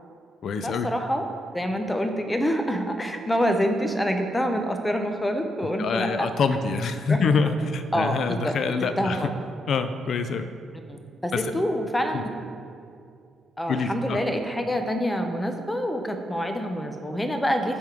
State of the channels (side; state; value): both; normal; correlation 0.82